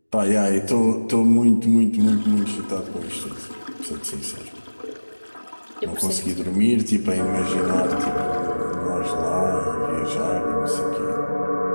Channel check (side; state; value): both; inverted; correlation -1.00